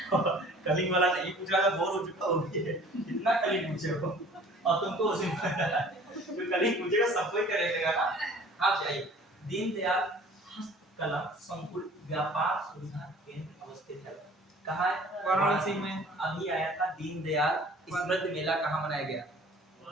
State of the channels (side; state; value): both; normal; correlation 0.50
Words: कलिंग वाला नहीं पूछा, मैं बोर हो चुका हूं, इतना कलिंग पूछे हो और तुमको उसी जो कलिंग पूछेगा सब कोई करेगा ना। आप चाहिए दीनदयाल हस्तकला संकुल व्यापार सुविधा केंद्र अवस्थित है, कहाँ है, वाराणसी में। अभी आया था दीनदयाल स्मृति मेला, कहाँ मनाया गया,